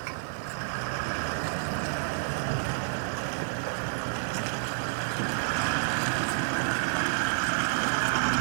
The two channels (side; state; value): left; silent; 58 dB below the other